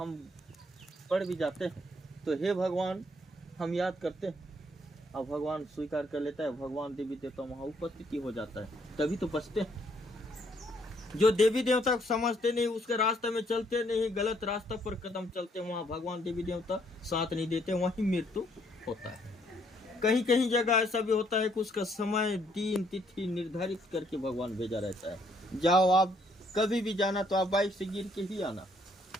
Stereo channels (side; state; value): both; normal; correlation 0.68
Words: पड़ भी जाते हैं तो हे भगवान हम याद करते हैं और भगवान स्वीकार कर लेता है। भगवान देवी देवता वहाँ उपस्थिति हो जाता है, तभी तो बचते हैं। जो देवी देवता को समझते नहीं, उसके रास्ते में चलते नहीं, गलत रास्ता पर कदम चलते, वहाँ भगवान देवी देवता साथ नहीं देते, वहीं मृत्यु होता है। कहीं कहीं जगह ऐसा भी होता है कि उसका समय दिन तिथि निर्धारित करके भगवान भेजा रहता है। जाओ, आप कभी भी जाना तो आप बाइक से गिर के ही आना,